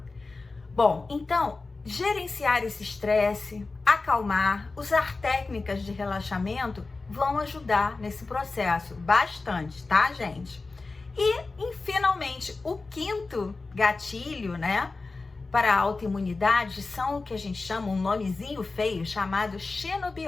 Bom, então, gerenciar esse estresse, acalmar, usar técnicas de relaxamento vão ajudar nesse processo bastante, tá, gente? E finalmente, o quinto gatilho, né, para a autoimunidade são o que a gente chama, um nomezinho feio, chamado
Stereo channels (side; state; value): right; quieter; 3.7 dB